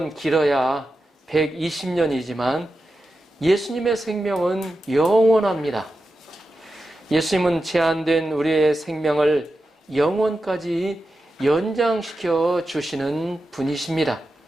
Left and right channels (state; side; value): normal; both; correlation 0.90